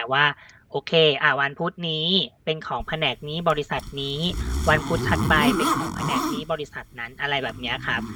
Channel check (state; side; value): identical; both; correlation 1.00